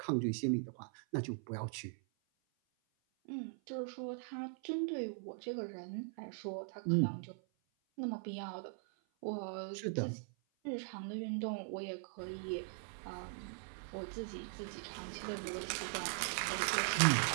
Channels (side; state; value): left; silent; 51 dB below the other